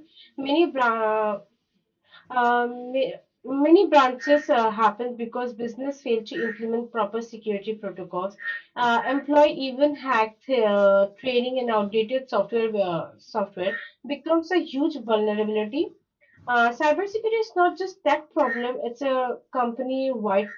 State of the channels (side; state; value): both; identical; correlation 1.00